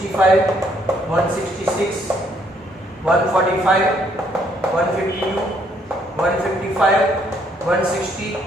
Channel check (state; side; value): normal; both; correlation 0.68